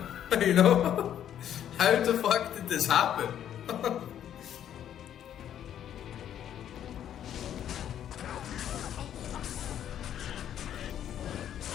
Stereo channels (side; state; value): right; quieter; 10.3 dB